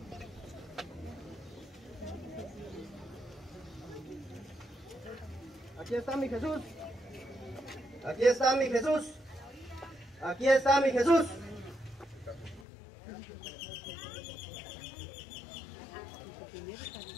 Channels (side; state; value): right; drops out; at 12.7 s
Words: Aquí está mi Jesús. Aquí está mi Jesús. Aquí está mi Jesús.